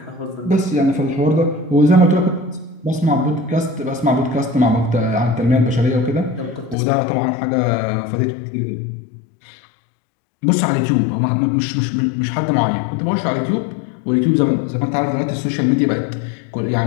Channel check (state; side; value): drops out; right; at 6.8 s